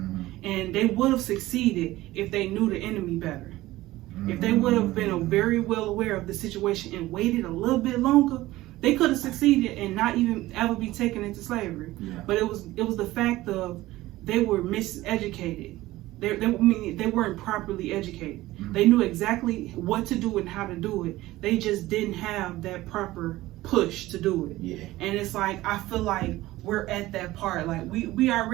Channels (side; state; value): left; quieter; 17.3 dB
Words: And they would have succeeded if they knew the enemy better. If they would have been very well aware of the situation and waited a little bit longer, they could have succeeded and not even ever be taken into slavery. But it was the fact of they were miseducated. They weren't properly educated. They knew exactly what to do and how to do it. They just didn't have that proper push to do it. And it's like, I feel like we're at that part. Like we